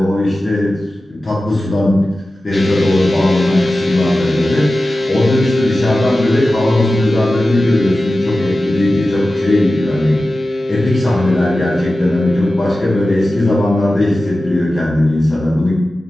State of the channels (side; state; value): both; normal; correlation 0.94